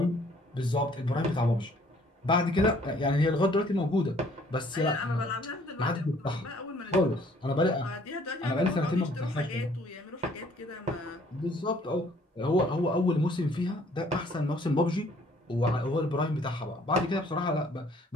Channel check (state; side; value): normal; both; correlation 0.59